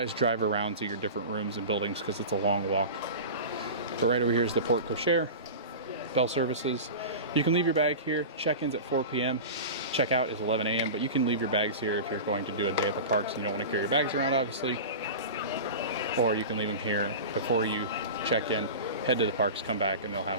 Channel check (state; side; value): inverted; both; correlation -0.30